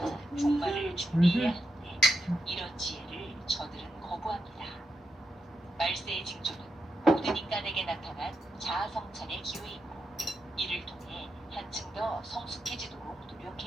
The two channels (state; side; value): normal; both; correlation 0.85